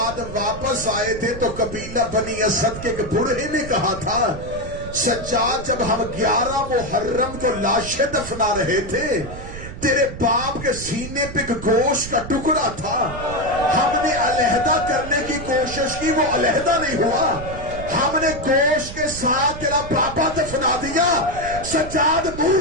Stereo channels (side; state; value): right; noise; rumble, 11 dB below the sound